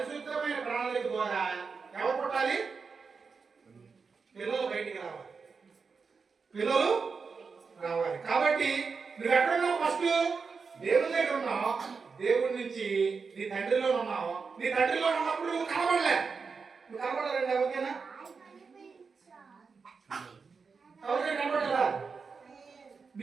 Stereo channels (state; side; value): quieter; left; 5.1 dB